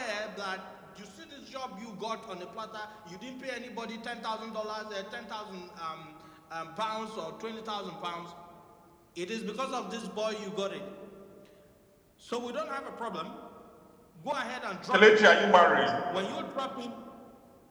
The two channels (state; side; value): identical; both; correlation 1.00